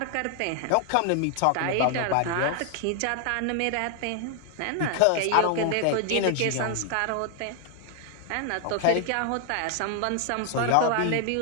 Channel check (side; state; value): both; different; correlation 0.00